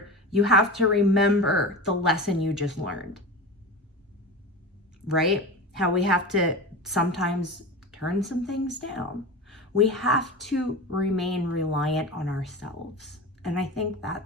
you have to remember the lesson you just learned, right? How we have to sometimes turn some things down. We have to remain reliant on ourselves. And I think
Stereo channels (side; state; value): both; normal; correlation 0.28